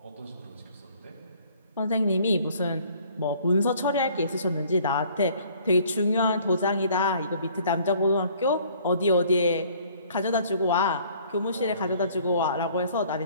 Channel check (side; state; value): both; inverted; correlation -0.57